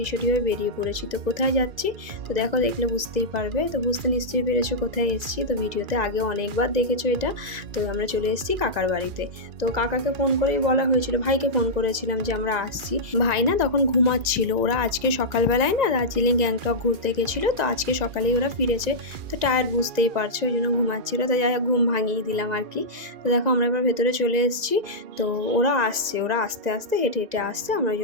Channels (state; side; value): late; left; 2.0 ms